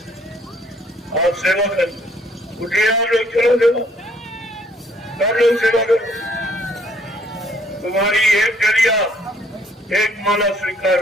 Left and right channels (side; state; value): both; normal; correlation 0.64